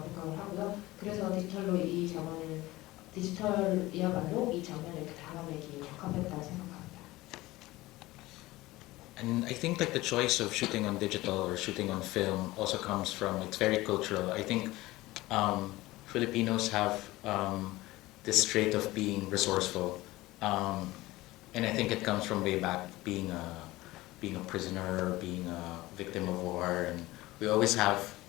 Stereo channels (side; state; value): right; quieter; 18.8 dB